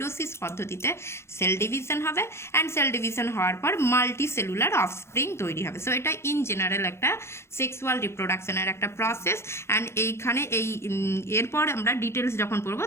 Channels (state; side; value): late; right; 0.13 ms